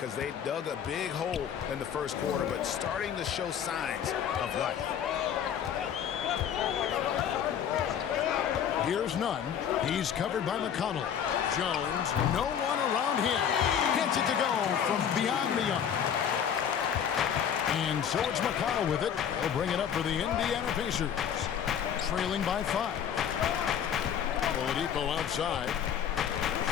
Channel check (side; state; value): right; quieter; 8.6 dB